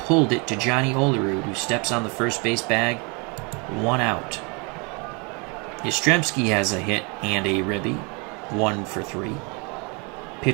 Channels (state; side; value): quieter; left; 31.8 dB